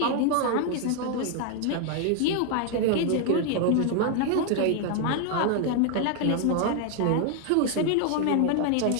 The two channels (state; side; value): different; both; correlation 0.00